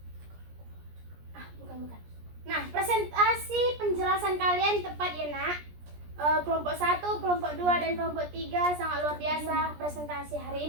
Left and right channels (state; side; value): late; left; 17 ms